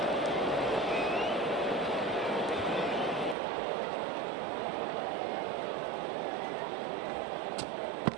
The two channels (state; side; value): drops out; left; at 3.4 s